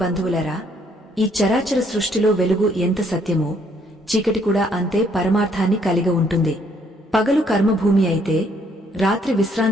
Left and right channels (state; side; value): normal; both; correlation 0.67